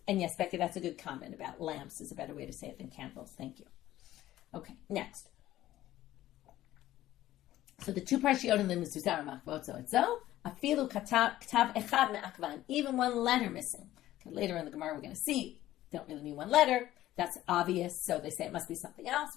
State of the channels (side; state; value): right; quieter; 14.4 dB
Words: And yes, Becky, that's a good comment about lamps is a better way to say it than candles. Thank you. Okay, next. So the 2 parshiyot in the mezuzah are makvot zoetzo, afilu katav echad me'akvan, even 1 letter missing. Okay, later in the Gemara, we're going to see, don't really mean 1 letter. That's obvious, so they say it must be something